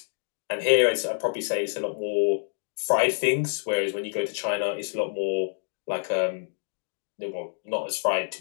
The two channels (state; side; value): silent; right; digital silence